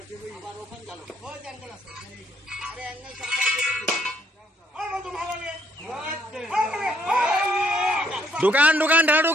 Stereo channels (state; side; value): normal; both; correlation 0.70